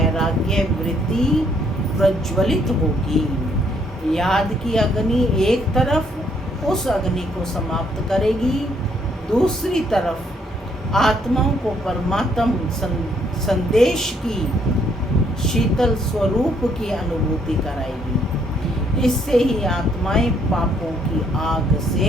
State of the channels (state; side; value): normal; both; correlation 0.68